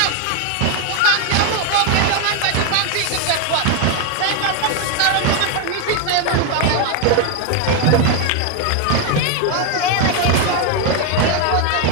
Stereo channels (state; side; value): different; both; correlation 0.01